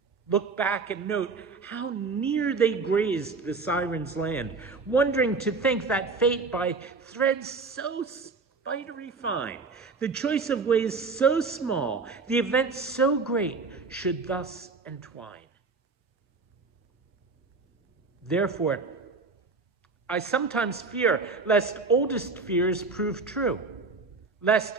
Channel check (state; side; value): quieter; left; 4.3 dB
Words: look back and note how near they grazed the siren's land, wondering to think that fate by threads so spidery fine, the choice of ways so small, the event so great, should thus entwine. Therefore, I sometimes fear lest oldest fears prove true, lest